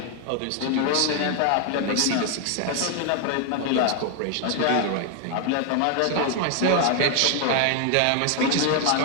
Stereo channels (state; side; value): different; both; correlation 0.01